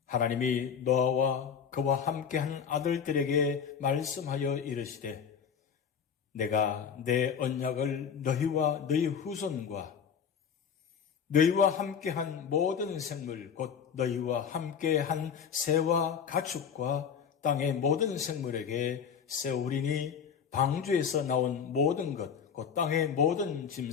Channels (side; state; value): right; quieter; 7.3 dB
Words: 하나님이 노아와 그와 함께한 아들들에게 말씀하여 이르시되 내가 내 언약을 너희와 너희 후손과 너희와 함께한 모든 생물 곧 너희와 함께한 새와 가축과 땅의 모든 생물에게 세우리니 방주에서 나온 모든 것 곧 땅의 모든